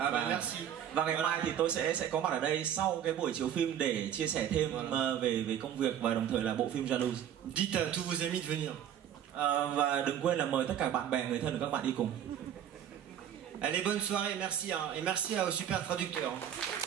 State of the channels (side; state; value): left; quieter; 9.8 dB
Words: Và ngày mai thì tôi sẽ có mặt ở đây sau cái buổi chiếu phim để chia sẻ thêm về công việc và đồng thời là bộ phim Jalouse. Dites à tous vos amis de venir. Và đừng quên là mời tất cả bạn bè, người thân của các bạn đi cùng. Allez, bonne soirée, merci, hein, et merci au super traducteur.